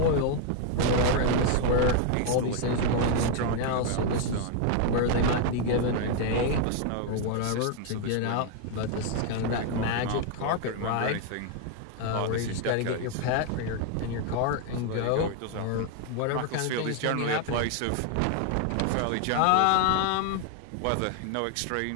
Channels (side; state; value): both; different; correlation 0.01